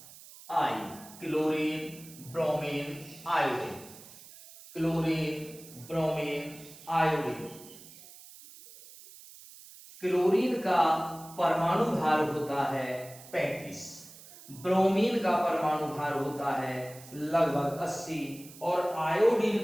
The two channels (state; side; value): noise; right; hiss, 19 dB below the sound